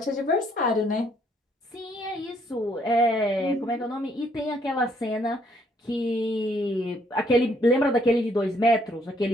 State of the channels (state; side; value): normal; both; correlation 0.68